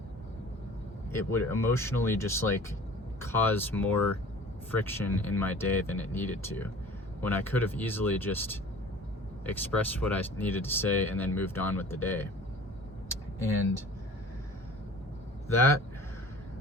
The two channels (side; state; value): both; normal; correlation 0.45